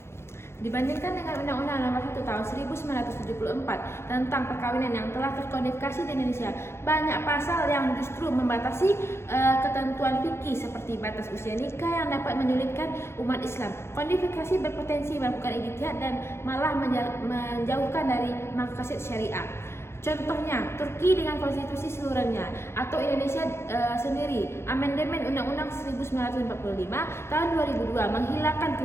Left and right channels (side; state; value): right; late; 0.12 ms